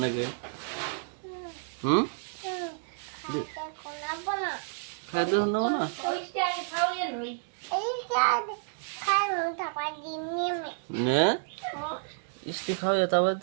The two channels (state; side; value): silent; left; digital silence